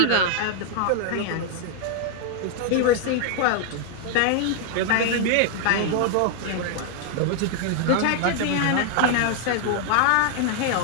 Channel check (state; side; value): different; both; correlation 0.00